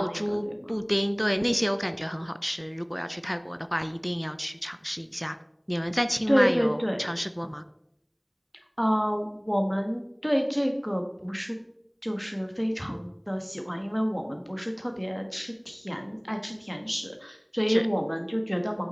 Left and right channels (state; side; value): identical; both; correlation 1.00